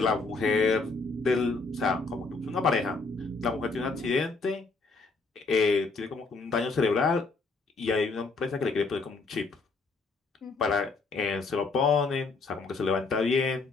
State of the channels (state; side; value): quieter; right; 3.9 dB